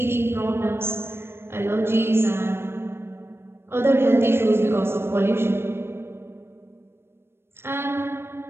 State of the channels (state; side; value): late; left; 0.12 ms